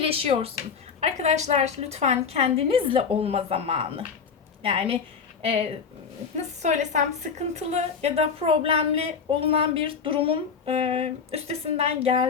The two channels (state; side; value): quieter; right; 6.0 dB